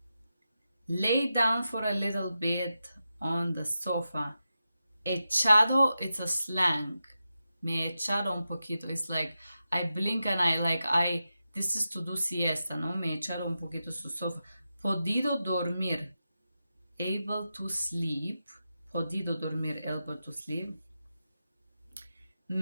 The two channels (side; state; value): both; inverted; correlation -0.90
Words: Lay down for a little bit on the sofa. Echado, it's a slang. Me he echado un poquito. It's like I blink and this is to do siesta, ¿no? Me he echado un poquito su sofa. Podido dormir. Able to sleep. Podido dormir, able to sleep.